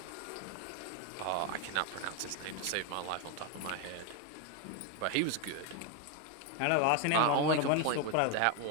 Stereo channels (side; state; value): both; different; correlation 0.01